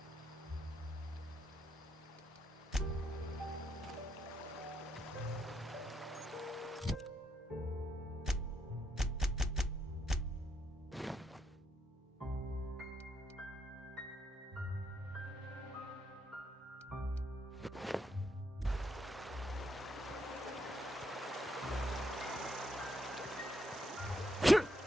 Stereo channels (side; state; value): both; normal; correlation 0.78